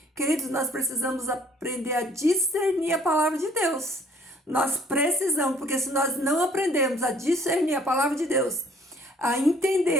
Queridos, nós precisamos aprender a discernir a palavra de Deus. Nós precisamos, porque se nós não aprendermos a discernir a palavra de Deus, a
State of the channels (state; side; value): normal; both; correlation 0.58